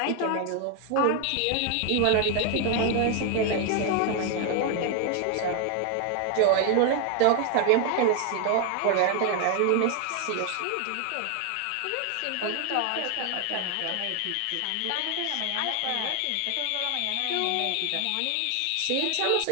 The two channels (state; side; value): different; both; correlation 0.00